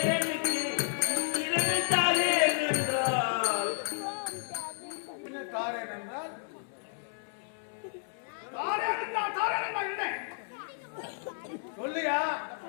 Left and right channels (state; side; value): silent; right; 57 dB below the other